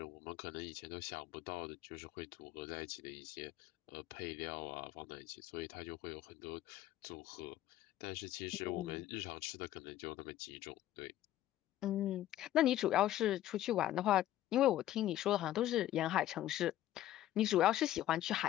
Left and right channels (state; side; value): quieter; right; 13.5 dB